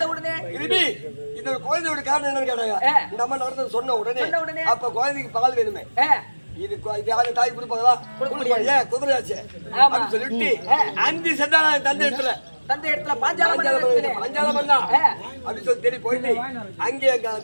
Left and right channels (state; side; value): inverted; both; correlation -1.00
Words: உடனே இந்த குழந்தையோட காரணம் என்னன்னு கேட்டாங்க. இந்த அம்மா நடந்தது சொன்ன உடனே அப்ப குழந்தைக்கு பால் வேணுமே, இது யாரு தாய் கொடுப்பாங்களா? ஏன் குதிரையாச்சு அப்படின்னு சொல்லிட்டு அஞ்சு சென்றாங்க தந்தை இடத்துல பாஞ்சாலம் அப்படின்னு சொல்லி தெரிய போயிட்டு அங்கே எங்க